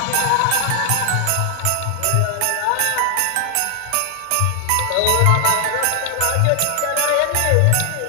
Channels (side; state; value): both; different; correlation 0.00